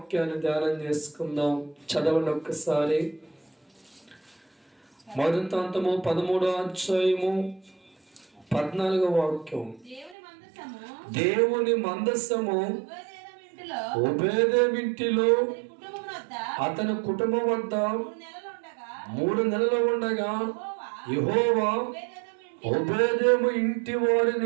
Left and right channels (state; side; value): drops out; left; at 10.2 s